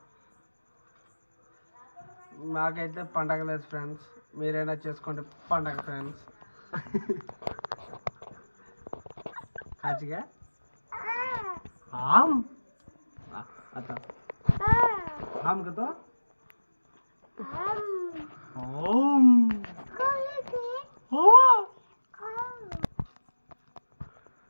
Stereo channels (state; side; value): inverted; both; correlation -1.00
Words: మాకైతే పండగ లేదు ఫ్రెండ్స్. మీరైనా చేసుకోండి పండగ ఫ్రెండ్స్. కాచిగా आम आता आम का तो ओम